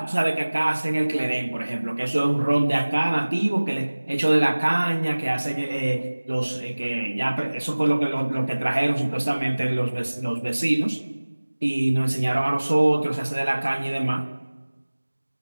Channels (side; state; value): both; inverted; correlation -1.00